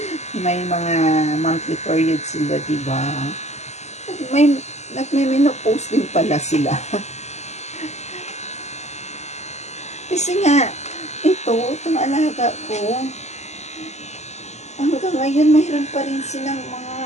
may mga monthly period sila, diba? Nagme-menopause din pala sila. Kasi nga, itong alaga ko, hanggang ngayon, mayroon pa rin silang mga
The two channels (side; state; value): right; late; 0.33 ms